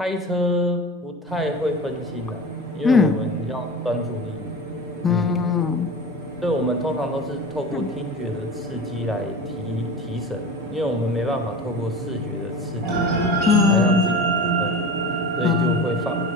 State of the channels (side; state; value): both; normal; correlation 0.33